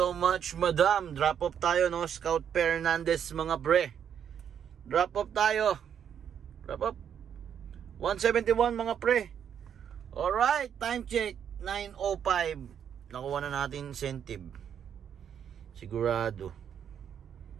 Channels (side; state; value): left; quieter; 8.5 dB